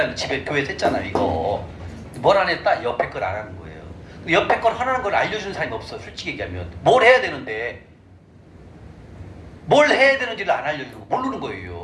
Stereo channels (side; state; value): both; identical; correlation 1.00